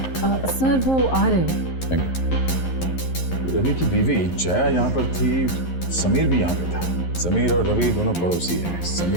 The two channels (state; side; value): late; right; 11 ms